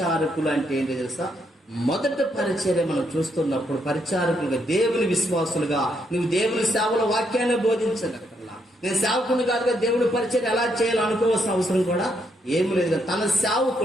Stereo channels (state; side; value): normal; both; correlation 0.76